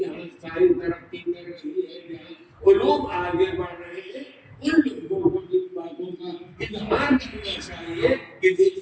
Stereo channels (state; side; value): identical; both; correlation 1.00